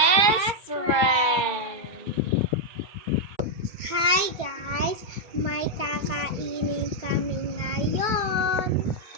friends. Hi guys! May kakainin kami ngayon.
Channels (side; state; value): left; late; 2.2 ms